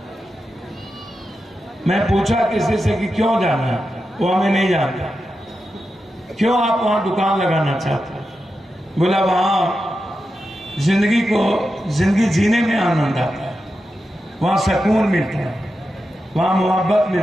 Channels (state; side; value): normal; both; correlation 0.89